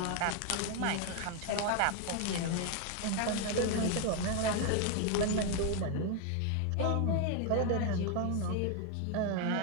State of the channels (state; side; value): different; both; correlation 0.01